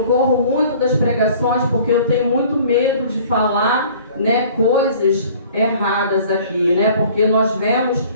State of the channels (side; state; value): both; inverted; correlation -0.51